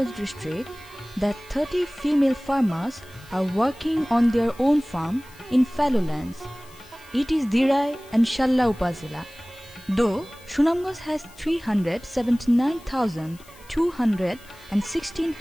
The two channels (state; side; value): noise; left; hiss, 24 dB below the sound